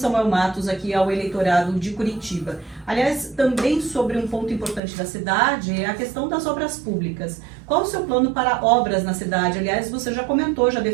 Matos aqui ao eleitorado de Curitiba. Aliás, também sobre um ponto importante da cidade é a questão das obras públicas. Qual o seu plano para obras na cidade? Aliás, você já comentou, já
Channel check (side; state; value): left; drops out; at 4.8 s